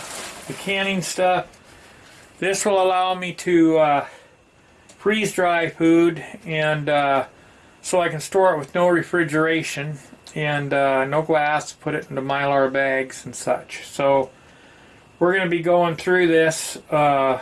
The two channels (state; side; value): identical; both; correlation 1.00